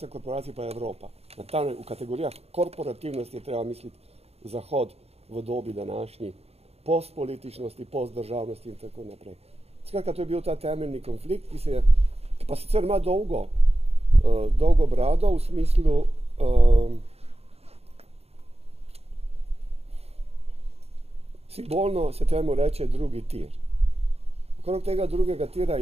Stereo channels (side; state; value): left; late; 0.30 ms